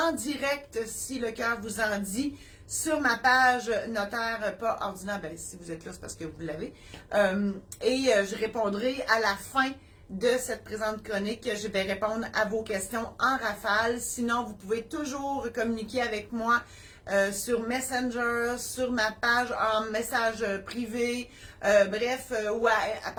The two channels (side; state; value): both; identical; correlation 1.00